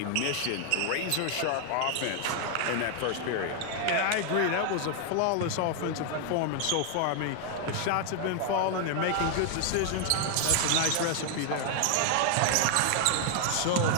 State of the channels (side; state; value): both; different; correlation 0.00